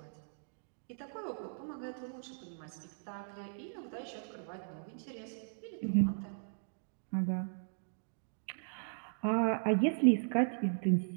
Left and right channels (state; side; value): silent; left; digital silence